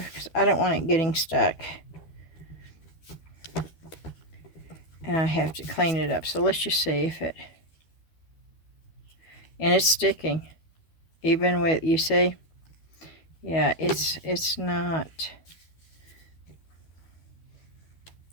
because I don't want it getting stuck. And I have to clean it up. So let's just see if it... And it's sticking. Even with, you see? Yeah, it's not...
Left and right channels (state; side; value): late; right; 12 ms